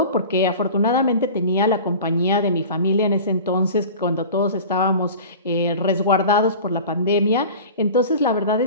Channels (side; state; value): both; inverted; correlation -0.37